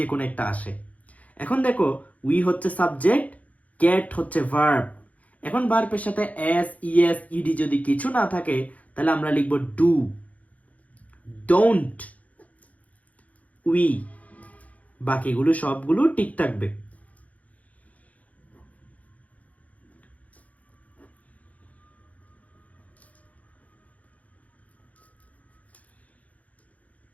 কোনো একটা আসে। এখন দেখো উই হচ্ছে সাবজেক্ট, গেট হচ্ছে ভার্ব, এখন ভার্বের সাথে এস, ইএস, ইডি যদি কিছু না থাকে তাহলে আমরা লিখব ডু, ডোন্ট, উই। বাকিগুলো সবগুলো ঠিক থাকবে।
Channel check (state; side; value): late; right; 0.070 ms